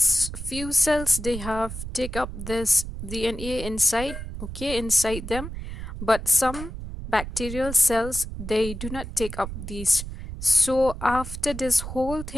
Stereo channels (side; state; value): right; noise; rumble, 8 dB below the sound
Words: cells, they have take up this DNA inside, okay, inside them, but some bacterial cells, they do not take up these. So after this whole